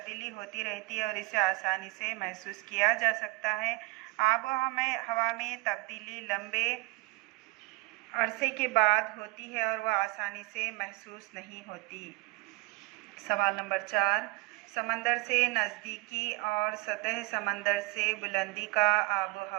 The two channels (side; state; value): left; quieter; 22.7 dB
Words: होती रहती है और इसे आसानी से महसूस किया जा सकता है। आब व हवा में तब्दीली लंबे अरसे के बाद होती है और वह आसानी से महसूस नहीं होती। सवाल नंबर 4, समंदर से नज़दीकी और सतह समंदर से बुलंदी का आब व